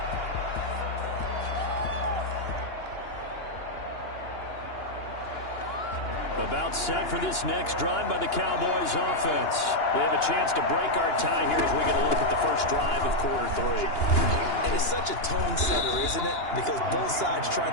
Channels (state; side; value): late; right; 2.9 ms